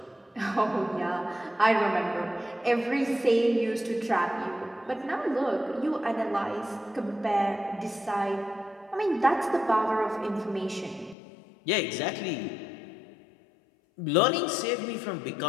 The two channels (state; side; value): drops out; right; at 11.2 s